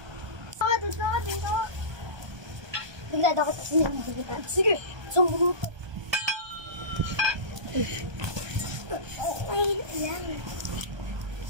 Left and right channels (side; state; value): left; late; 1.2 ms